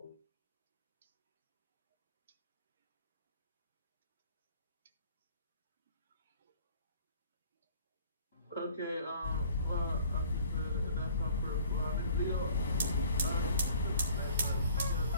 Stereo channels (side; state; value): both; inverted; correlation -0.52